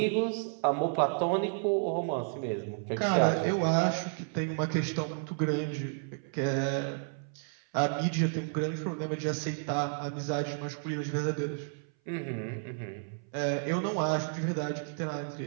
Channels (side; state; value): left; silent; 57 dB below the other